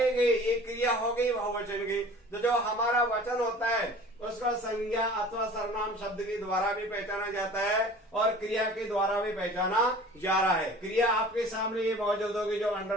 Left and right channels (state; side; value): normal; both; correlation 0.44